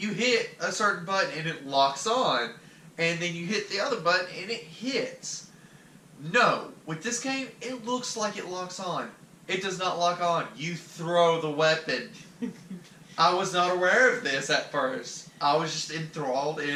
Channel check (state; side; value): identical; both; correlation 1.00